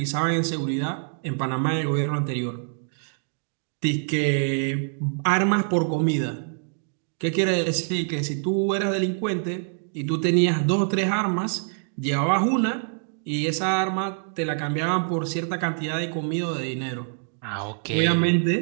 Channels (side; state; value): left; silent; digital silence